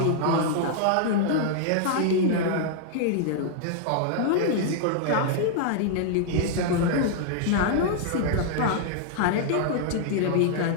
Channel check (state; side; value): different; both; correlation -0.01